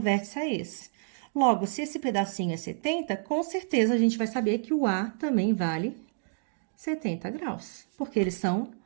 a esse. Logo, se esse pedacinho é 70, com certeza a gente vai saber que o A também vale 70 graus, porque eles são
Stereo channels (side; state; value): left; silent; digital silence